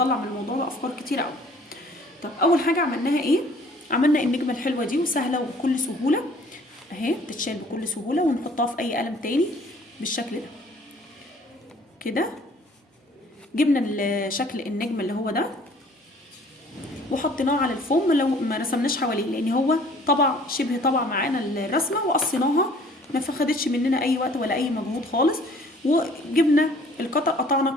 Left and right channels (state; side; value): normal; both; correlation 0.54